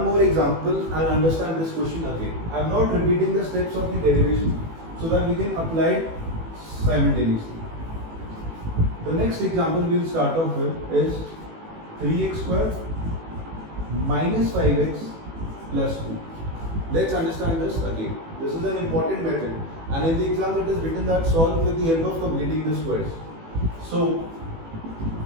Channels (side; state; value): left; late; 18 ms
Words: more example and understand this question again. I am not repeating the steps of the derivation so that we can apply it simultaneously. The next example we will start off with is 3x square minus 5x plus 2. Let's understand this again. This is an important method, and in the exam it is written that solve with the help of completing the squares. So